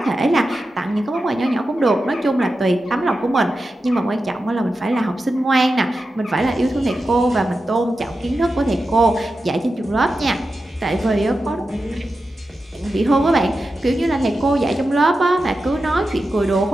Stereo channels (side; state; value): both; normal; correlation 0.91